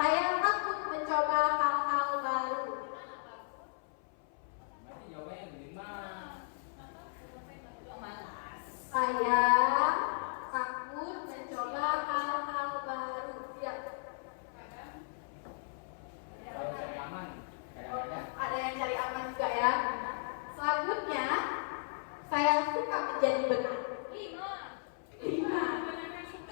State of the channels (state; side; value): silent; right; 54 dB below the other